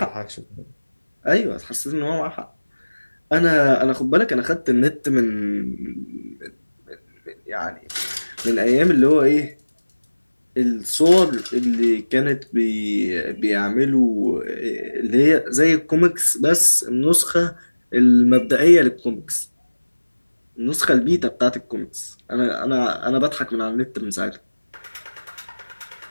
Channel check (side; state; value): both; inverted; correlation -1.00